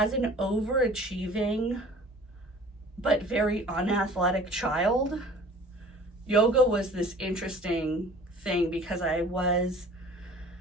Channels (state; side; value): normal; both; correlation 0.48